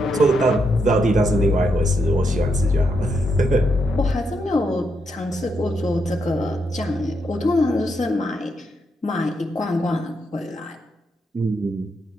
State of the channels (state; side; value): normal; both; correlation 0.80